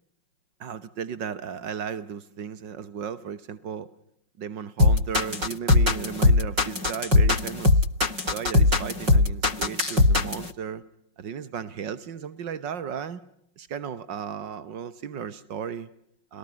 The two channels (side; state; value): left; late; 5.5 ms